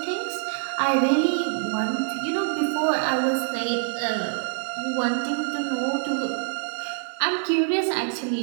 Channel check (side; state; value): left; silent; digital silence